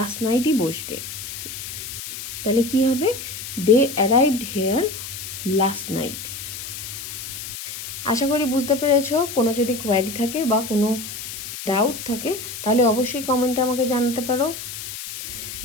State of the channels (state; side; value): noise; left; hiss, 9 dB below the sound